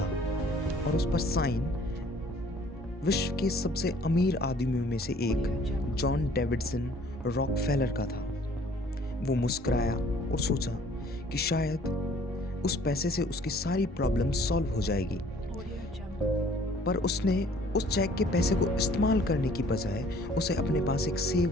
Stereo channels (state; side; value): normal; both; correlation 0.56